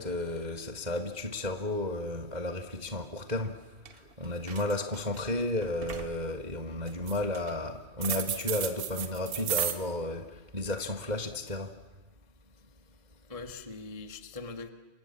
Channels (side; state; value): left; late; 2.7 ms